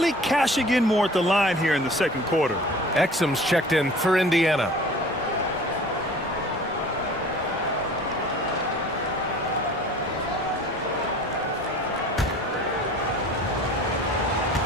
cashing in more at the line here in the second quarter. Exum's checked in for Indiana.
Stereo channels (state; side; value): normal; both; correlation 0.45